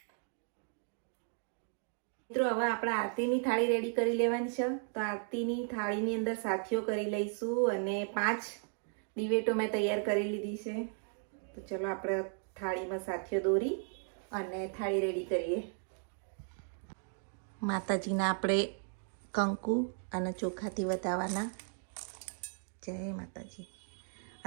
મિત્રો, હવે આપણે આરતીની થાળી રેડી કરી લેવાની છે. તો આરતીની થાળીની અંદર સાથીઓ કરી લઈશું. અને 5 દિવેટો મેં તૈયાર કરી લીધી છે. તો ચલો આપણે થાળીમાં સાથીઓ દોરી અને થાળી રેડી કરીએ. માતાજીના આપણે કંકુ અને ચોખાથી વધાવવાના. જય માતાજી.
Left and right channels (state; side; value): silent; left; 54 dB below the other